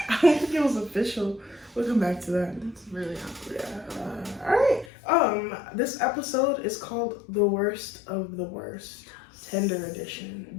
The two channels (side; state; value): right; drops out; at 4.9 s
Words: don't think it was official. We'll come back to that. That's really awkward. Yeah. Alright. This episode is called The Worst of the Worst. Tinder edition.